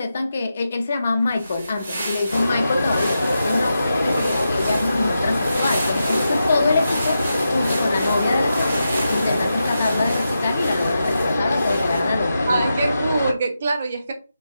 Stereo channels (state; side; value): inverted; both; correlation -0.88